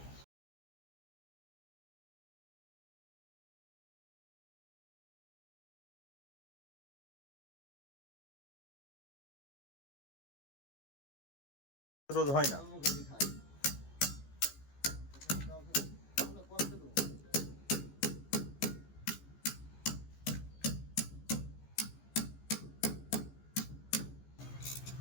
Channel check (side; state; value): right; late; 15 ms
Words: রোধ হয় না।